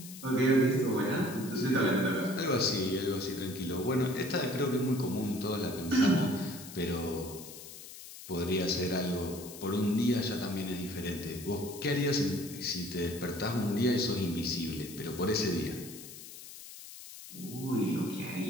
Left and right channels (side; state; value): left; noise; hiss, 14 dB below the sound